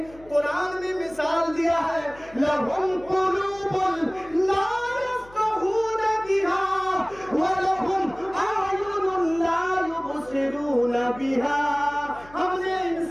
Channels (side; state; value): left; noise; hum, 23 dB below the sound